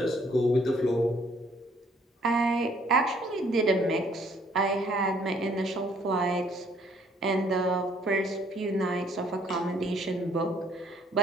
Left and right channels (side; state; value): both; normal; correlation 0.63